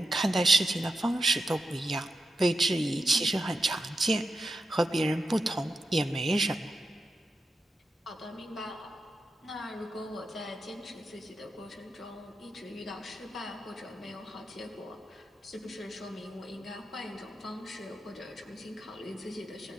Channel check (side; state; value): both; normal; correlation 0.89